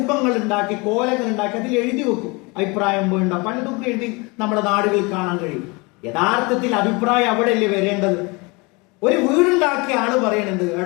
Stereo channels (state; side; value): quieter; right; 27.1 dB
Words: ഉണ്ടാക്കി, കോലങ്ങൾ ഉണ്ടാക്കി അതിൽ എഴുതി വെക്കും. അഭിപ്രായം വേണ്ട പലതും എഴുതി നമ്മുടെ നാടുകളിൽ കാണാൻ കഴിയും. യഥാർത്ഥത്തിൽ അഭിപ്രായം അവിടെയല്ലേ വരേണ്ടത്? ഒരു വീടുണ്ടാക്കിയ ആള് പറയണത്,